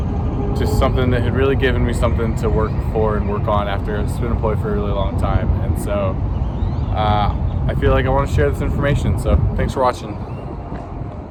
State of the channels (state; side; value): identical; both; correlation 1.00